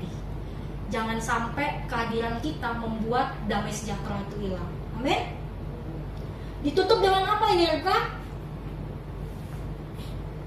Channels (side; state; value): both; identical; correlation 1.00